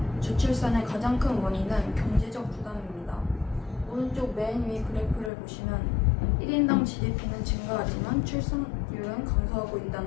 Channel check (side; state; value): right; drops out; at 5.3 s